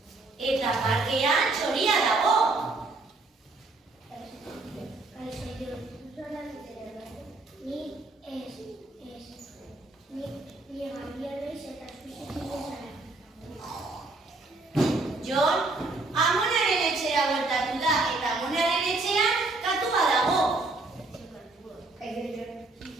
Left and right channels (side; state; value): left; quieter; 3.3 dB